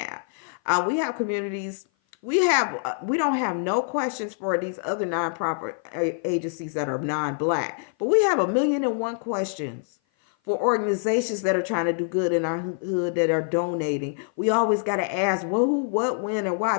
We have communities. We don't have no questions for these other nonprofit agencies that are non-black, but we have 1,000,001 questions for organizations that are trying to do good in our hood, that are donating. We always got to ask, well, who, what, when, and why,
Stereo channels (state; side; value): silent; right; 56 dB below the other